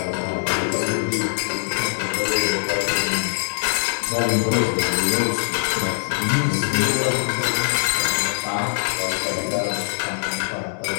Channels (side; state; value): right; silent; digital silence